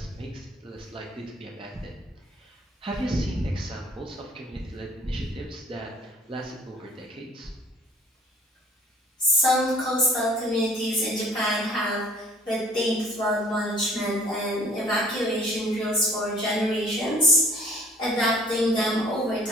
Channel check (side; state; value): both; normal; correlation 0.54